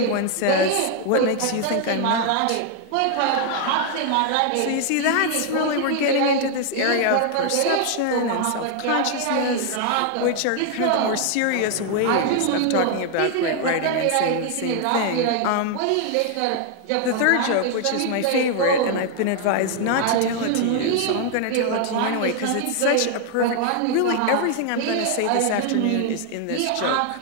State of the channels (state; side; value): different; both; correlation 0.00